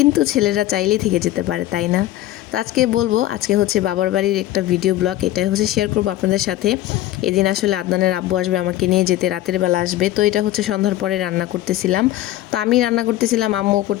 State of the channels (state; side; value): quieter; right; 14.7 dB